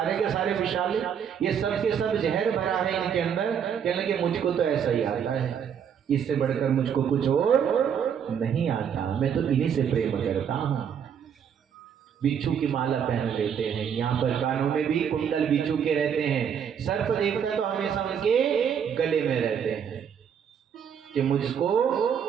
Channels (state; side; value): quieter; left; 7.9 dB